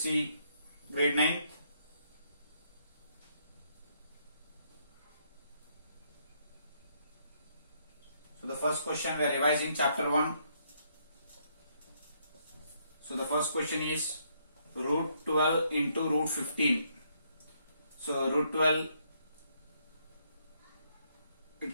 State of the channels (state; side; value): inverted; both; correlation -0.72